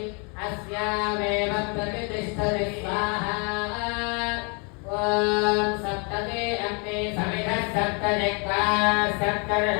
अस्यामेव प्रतिष्ठति स्वाहा ॐ सप्तमे अग्ने समिधः सप्तजिह्वा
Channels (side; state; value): right; quieter; 35.2 dB